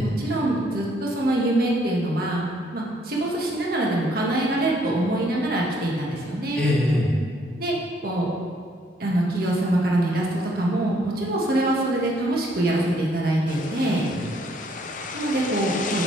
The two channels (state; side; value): normal; both; correlation 0.67